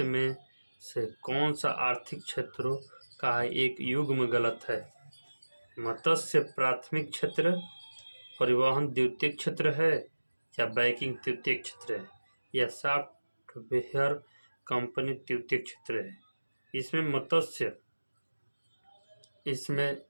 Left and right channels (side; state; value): both; inverted; correlation -1.00